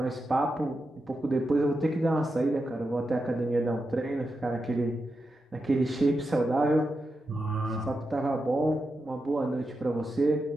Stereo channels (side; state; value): both; normal; correlation 0.88